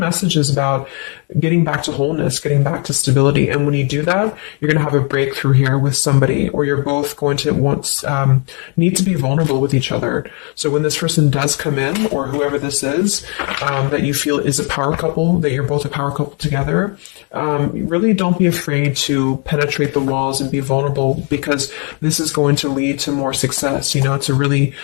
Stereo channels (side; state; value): right; quieter; 37.0 dB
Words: is about getting back to wholeness, getting back to stability. And when you do that, you're going to have a breakthrough here with somebody, or you're both going to need to be vulnerable with each other. So when this person does come in, or whoever this is, that you feel is a power couple, that you're both a power couple together, really don't be afraid to penetrate the walls and be vulnerable, because this is going to lead to more success, to really,